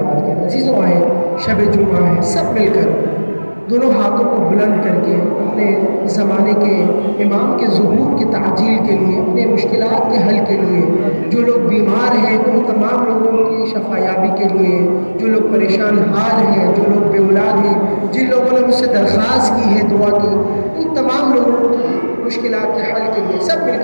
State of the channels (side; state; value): both; inverted; correlation -1.00